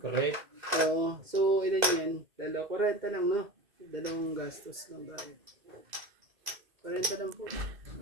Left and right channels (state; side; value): late; left; 2.0 ms